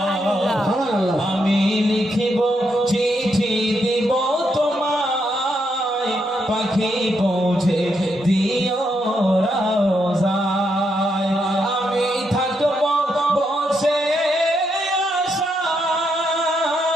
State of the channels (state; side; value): normal; both; correlation 0.79